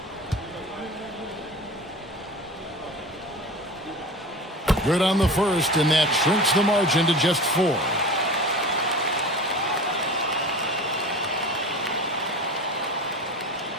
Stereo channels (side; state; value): both; normal; correlation 0.34